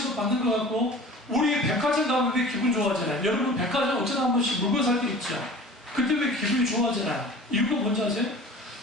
받는 것 같고, 우리 백화점 가면 왜 기분 좋아하잖아요. 여러분 백화점 어쩌다 한 번씩 물건 살 때 있죠. 그때 왜 기분이 좋아하잖아요. 이유가 뭔지 아세요?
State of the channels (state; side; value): normal; both; correlation 0.42